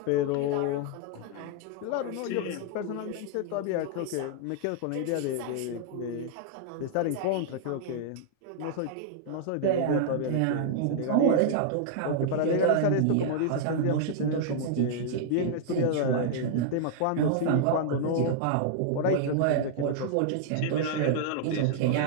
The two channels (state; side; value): different; both; correlation -0.01